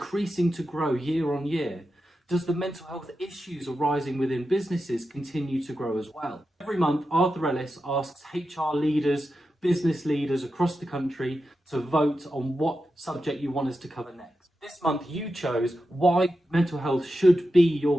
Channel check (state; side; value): normal; both; correlation 0.90